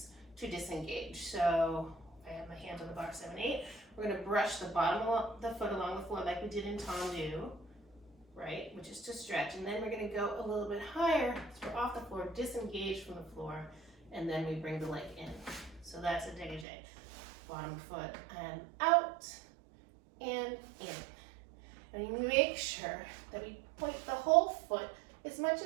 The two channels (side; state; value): left; drops out; at 16.7 s